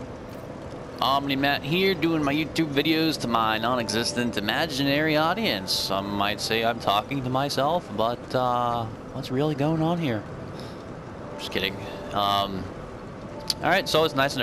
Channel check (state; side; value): identical; both; correlation 1.00